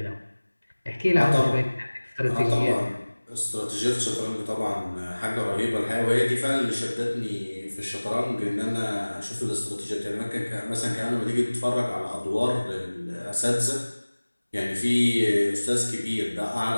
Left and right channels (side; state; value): both; inverted; correlation -1.00